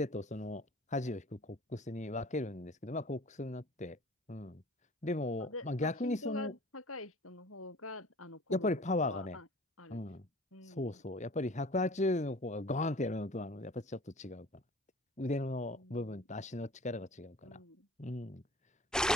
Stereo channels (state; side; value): normal; both; correlation 0.45